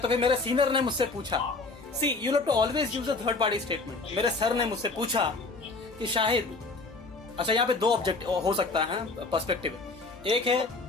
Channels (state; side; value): quieter; right; 3.7 dB